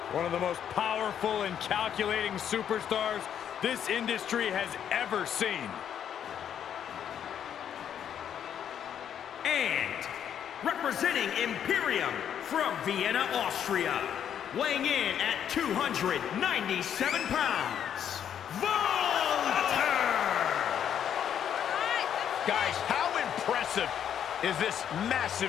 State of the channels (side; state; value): right; quieter; 9.1 dB